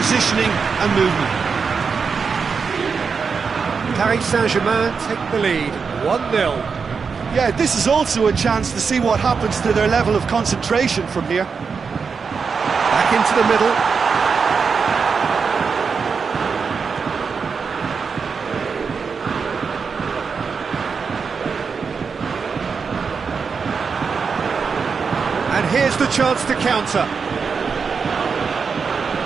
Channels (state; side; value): quieter; left; 5.5 dB